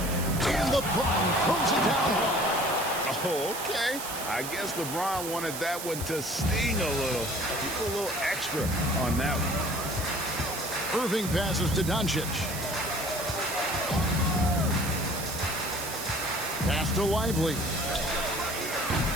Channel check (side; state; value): right; noise; hiss, 7 dB below the sound